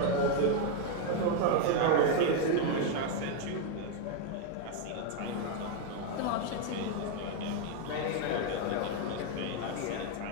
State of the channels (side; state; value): both; different; correlation 0.01